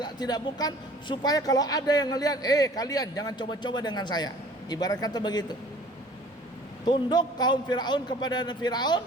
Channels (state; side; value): normal; both; correlation 0.50